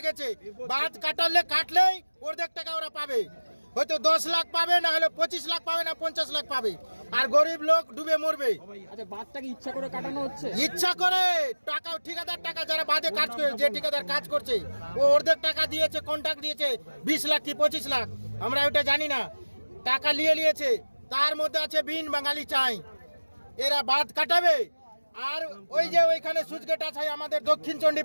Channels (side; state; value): both; inverted; correlation -1.00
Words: গেছে। বাঁধ কাটলেই অর্ধেক টাকা ওরা পাবে, হয়তো 10 লাখ পাবে, না হলে 25 লাখ পাবে, না 50 লাখ পাবে। আর গরিব লোক ডুবে মরবে। আচ্ছা, বাঁধটাকে ইচ্ছা করে কাটানো হচ্ছে? ইচ্ছা করে টাকা, ঠিকাদার টাকা, যারা বাঁধে কাজ করে, যে ঠিকাদার কাজ করছে ও অর্ধেক টাকা দিয়েছে, কন্ট্রাক্ট দিয়েছে 20 লাখ কি 25 লাখ, আমরা ওটা জানি না। টাকা নিয়েছে, তার মধ্যে আছে বিন বাঙালি চাই, এরা বাঁধ কাটাবে। আর ওই যে ওইখানে সুইচ গেট আছে আমাদের দক্ষিণ